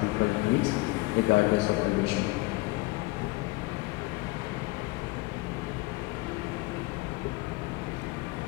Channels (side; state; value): right; quieter; 22.7 dB